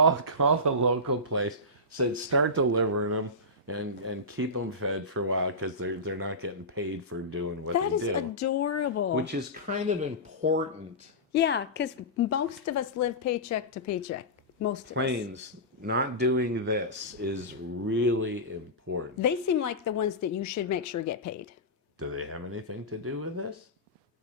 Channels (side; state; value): both; normal; correlation -0.18